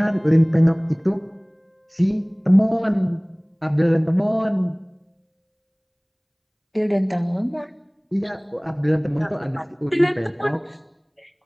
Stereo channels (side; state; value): both; identical; correlation 1.00